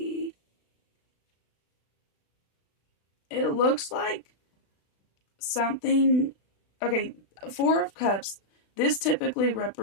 looks like something... Okay, Four of Cups. This typically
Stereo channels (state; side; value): late; right; 36 ms